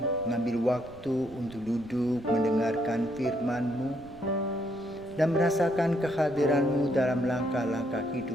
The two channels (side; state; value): right; noise; rumble, 21 dB below the sound